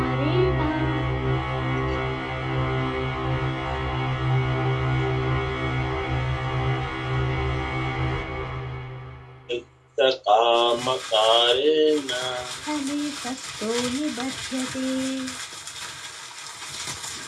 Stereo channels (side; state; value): both; identical; correlation 1.00